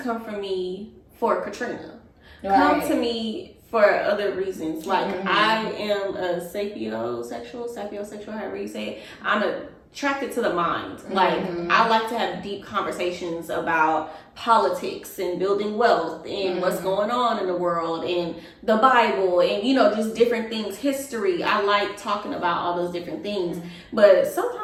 for me for Katrina. Come to me for other reasons. Like, I am a sapiosexual, however you say it. I'm attracted to the mind. Like, I like to have deep conversations about politics and building wealth and what's going on in the world and the Bible and, just different things, history. I like talking about all those different things. But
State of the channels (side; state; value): both; identical; correlation 1.00